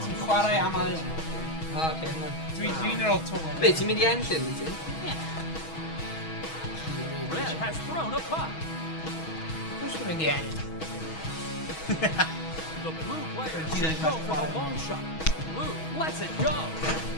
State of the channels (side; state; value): right; late; 6.2 ms